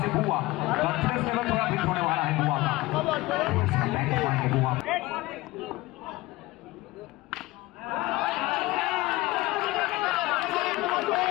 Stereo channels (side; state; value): right; quieter; 19.8 dB